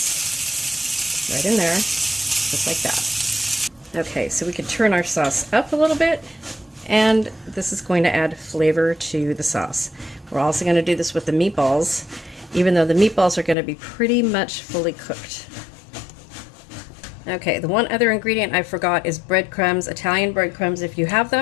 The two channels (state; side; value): drops out; right; at 13.6 s